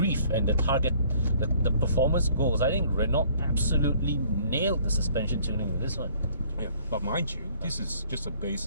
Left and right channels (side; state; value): both; inverted; correlation -0.58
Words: and the target, the performance goals, I think Renault absolutely nailed the suspension tuning with this one. Yeah, but mind you, this is just a